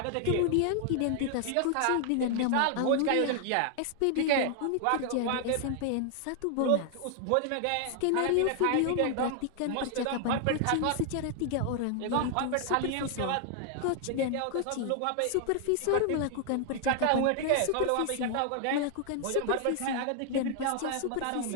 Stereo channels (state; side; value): different; both; correlation 0.00